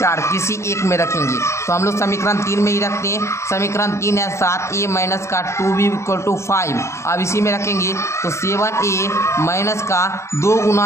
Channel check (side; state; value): right; late; 0.14 ms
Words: किसी एक में रखेंगे। तो हम लोग समीकरण 3 में ही रखते हैं। समीकरण 3 है 7a माइनस का 2b इक्वल टू 5। अब इसी में रखेंगे तो 7a माइनस का 2